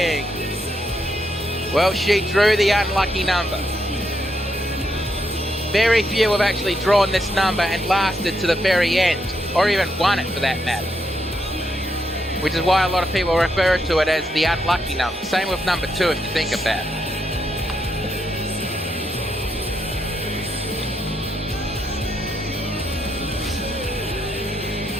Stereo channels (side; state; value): both; normal; correlation 0.79